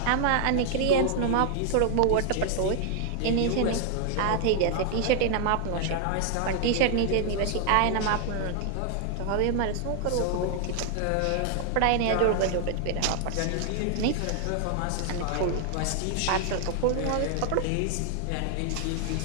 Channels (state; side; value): different; both; correlation 0.00